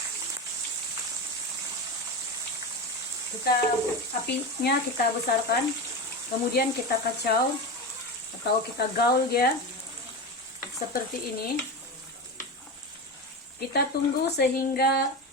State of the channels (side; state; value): both; normal; correlation 0.22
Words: Apinya kita besarkan, kemudian kita kacau atau kita gaul dia seperti ini. Kita tunggu sehingga